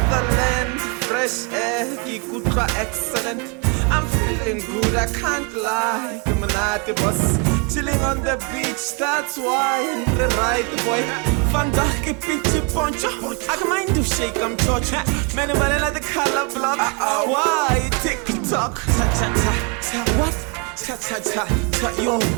land, fresh air, kikutwa excellent. I'm feeling good, I can't lie. Kumanati boss, chilling on the beach, that's why. The right boy, Fandaki pinchi poncho. I can mind to shake, I'm touch. Many like the color block. Why TikTok? What? Yo,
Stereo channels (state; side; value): quieter; left; 34.8 dB